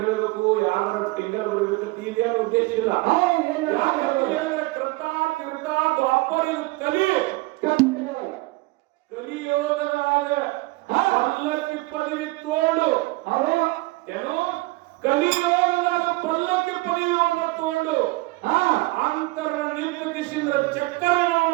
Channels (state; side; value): quieter; left; 22.7 dB